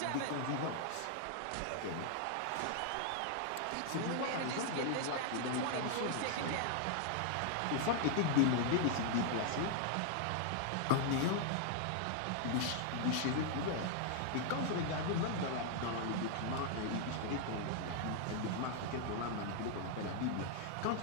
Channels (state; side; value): different; both; correlation 0.00